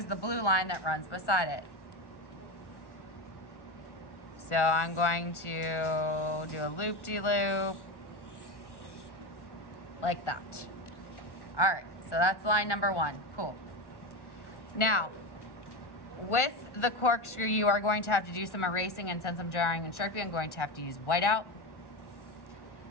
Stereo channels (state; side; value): late; right; 1.1 ms